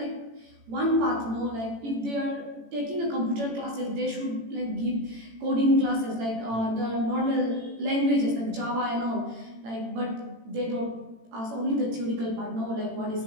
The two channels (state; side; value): late; left; 18 ms